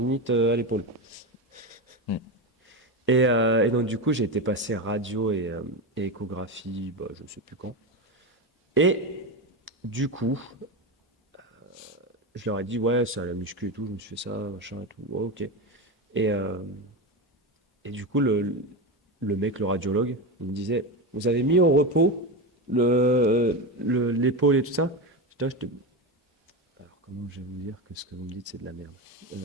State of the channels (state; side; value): normal; both; correlation 0.17